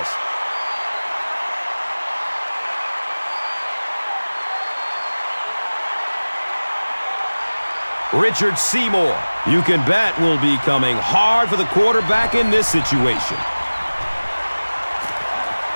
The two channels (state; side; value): inverted; both; correlation -1.00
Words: Richard Seymour, you can bet, will be coming hard for the quarterback in this situation.